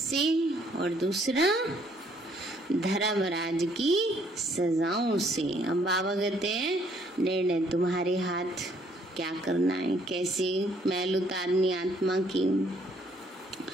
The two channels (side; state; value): both; normal; correlation 0.65